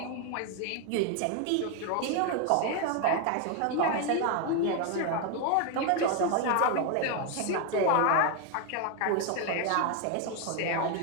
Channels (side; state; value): both; different; correlation 0.01